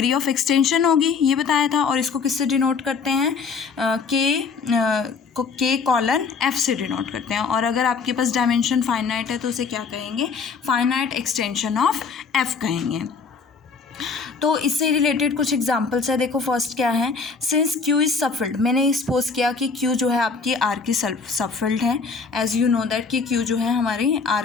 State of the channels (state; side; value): quieter; right; 5.1 dB